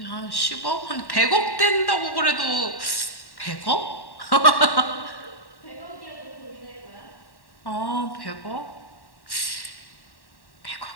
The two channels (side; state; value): right; late; 1.1 ms